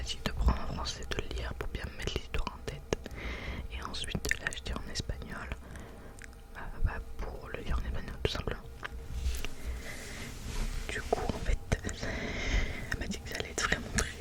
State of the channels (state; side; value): identical; both; correlation 1.00